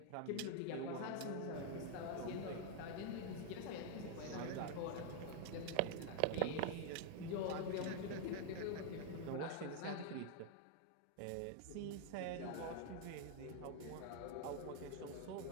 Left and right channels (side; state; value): both; different; correlation 0.00